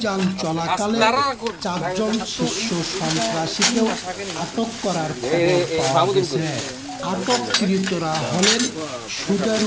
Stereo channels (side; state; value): both; identical; correlation 1.00